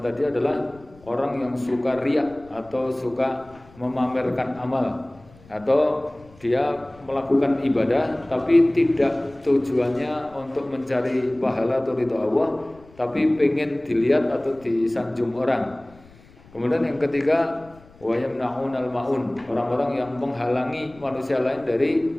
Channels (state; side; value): noise; left; rumble, 25 dB below the sound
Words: tadi adalah orang yang suka riya atau suka memamerkan amal, atau dia melakukan ibadah tapi tidak tujuannya untuk mencari pahala atau ridho Allah, tapi pengen dilihat atau disanjung orang. Kemudian yang ketiga, wa yamna'unal ma'un, orang-orang yang menghalangi manusia lain dari